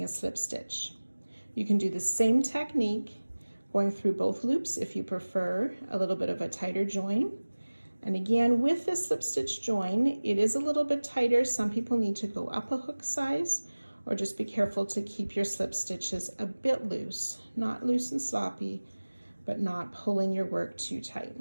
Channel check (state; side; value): inverted; both; correlation -1.00